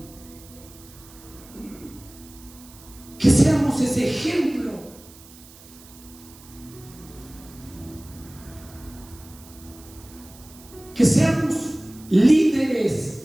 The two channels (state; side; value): noise; right; hiss, 21 dB below the sound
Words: Que seamos ese ejemplo. Que seamos